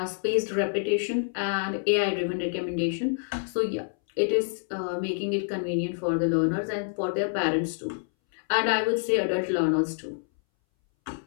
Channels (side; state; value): right; silent; 60 dB below the other